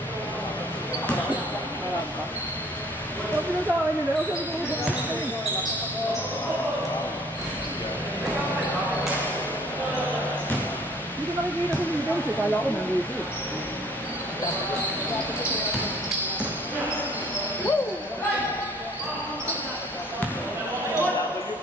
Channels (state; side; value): normal; both; correlation 0.56